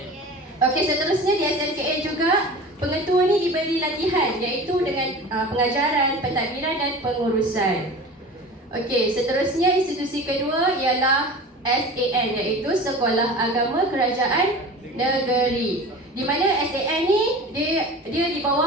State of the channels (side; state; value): both; normal; correlation 0.36